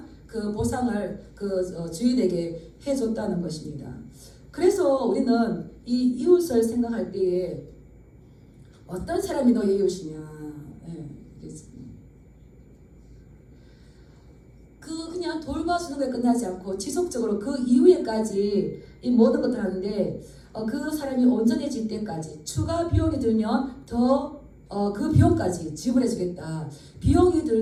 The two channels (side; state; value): both; identical; correlation 1.00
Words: 그 보상을 그 주인에게 해줬다는 것입니다. 그래서 우리는 이 이웃을 생각할 때에 어떤 사람이 너의 이웃이냐? 그냥 돌봐주는 것에 끝나지 않고 지속적으로 그 이후에까지 이 모든 것들을 하는데 그 사람이 온전해질 때까지 추가 비용이 들면 더 그 비용까지 지불해 주겠다. 비용이